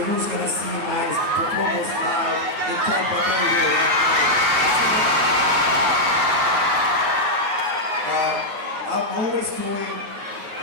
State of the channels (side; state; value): left; late; 9.5 ms